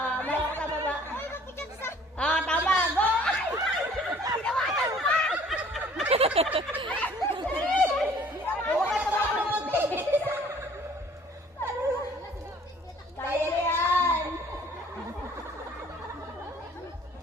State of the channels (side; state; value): both; normal; correlation 0.54